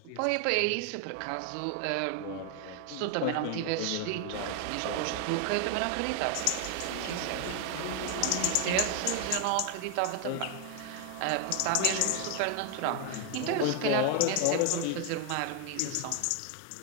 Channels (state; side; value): different; both; correlation 0.00